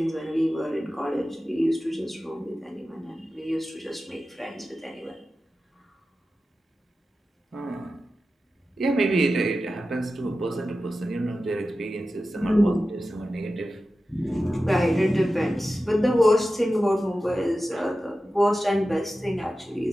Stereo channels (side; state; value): both; normal; correlation 0.93